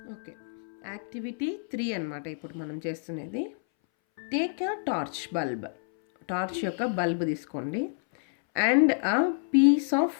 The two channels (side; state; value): right; silent; 59 dB below the other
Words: ఓకే, యాక్టివిటీ 3 అన్నమాట ఇప్పుడు మనం చేస్తున్నది. Take a torch bulb, torch యొక్క బల్బ్ తీసుకోండి. And a piece of